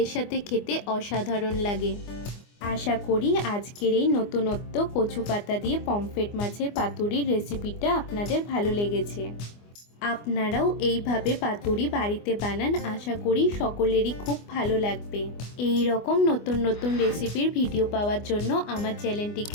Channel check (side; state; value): right; late; 24 ms